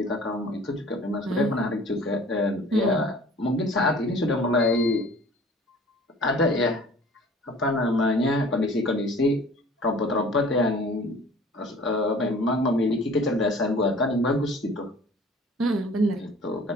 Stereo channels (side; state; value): both; normal; correlation 0.48